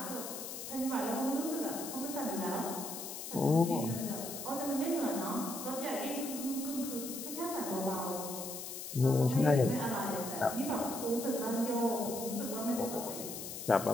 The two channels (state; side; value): noise; left; hiss, 8 dB below the sound